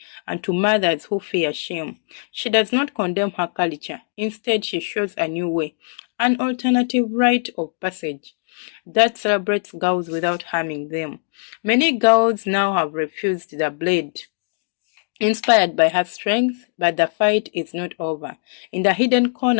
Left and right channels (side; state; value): right; silent; digital silence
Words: and to mothers who fear shame. She does not condemn her culture. Instead, she shows a new way, an alternative rite of passage that celebrates girls without harming them. Many girls now have refused the blade, inspired by her strength, but the fight is not over. In the hidden